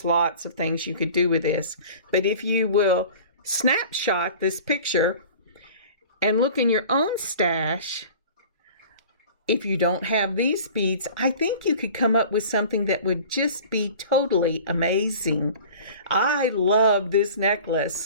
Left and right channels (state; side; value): inverted; both; correlation -0.43